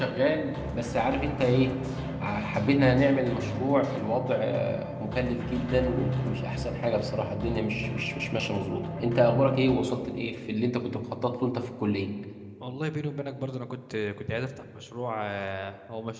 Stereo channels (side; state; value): both; identical; correlation 1.00